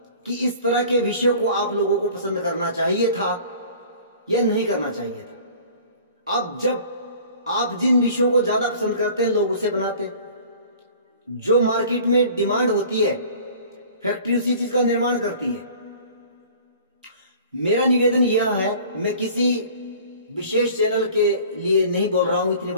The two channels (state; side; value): inverted; both; correlation -0.46